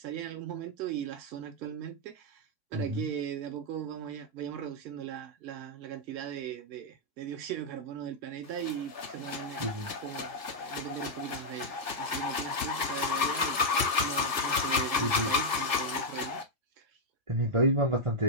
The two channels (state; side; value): late; left; 1.5 ms